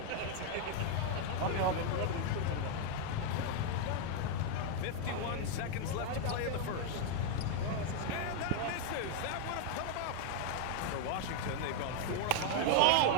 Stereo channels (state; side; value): different; both; correlation 0.00